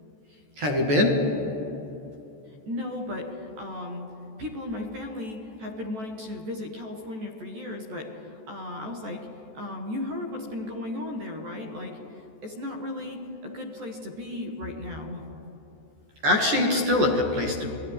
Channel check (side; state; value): left; late; 14 ms